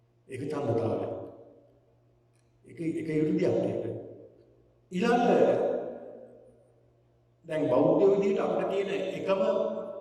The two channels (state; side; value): identical; both; correlation 1.00